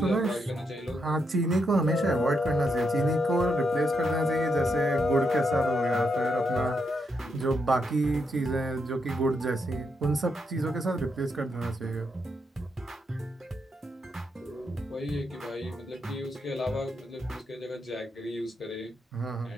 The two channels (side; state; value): both; normal; correlation 0.81